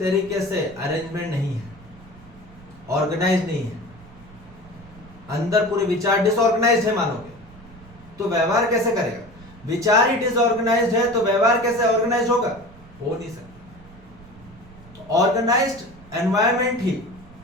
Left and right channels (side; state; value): right; noise; rumble, 22 dB below the sound